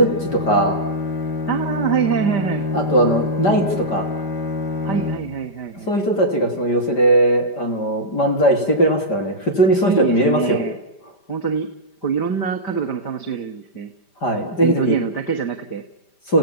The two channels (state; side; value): late; right; 5.1 ms